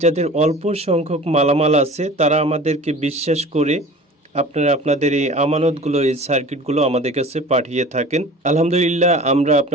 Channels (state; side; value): normal; both; correlation 0.41